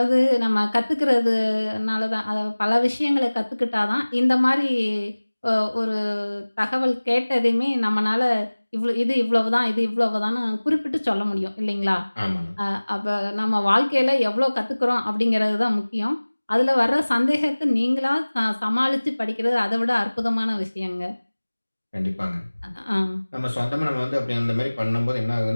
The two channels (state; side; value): inverted; both; correlation -1.00